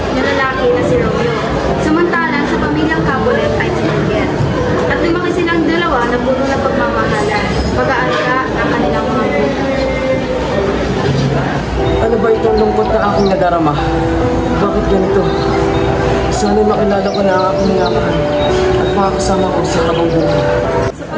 na lalaki na si Romeo, samantalang sa pamilyang Capulet ay si Juliet. At lumaki silang dalawa na puno ng pagmamahalan, pag-aalaga ng kanilang mga anak. Ano ba itong lungkot na aking nadarama? Bakit ganito? Sana makilala ko na ang aking minamahal at makakasama ko sa habang buhay. Sa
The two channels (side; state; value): both; identical; correlation 1.00